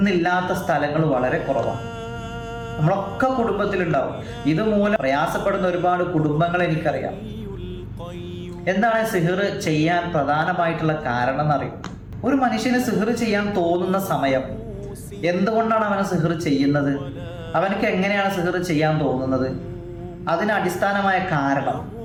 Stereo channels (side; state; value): both; identical; correlation 1.00